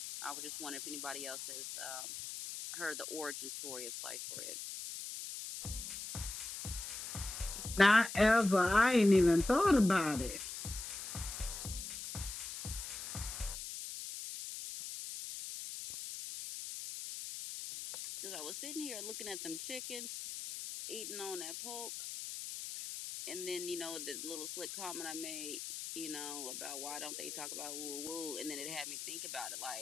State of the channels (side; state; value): left; noise; hiss, 7 dB below the sound